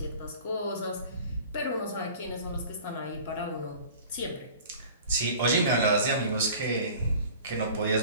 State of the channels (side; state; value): both; inverted; correlation -0.44